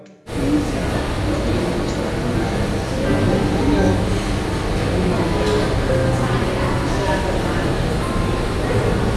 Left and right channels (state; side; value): identical; both; correlation 1.00